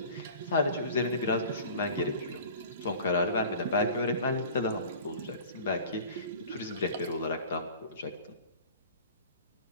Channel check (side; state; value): both; inverted; correlation -0.42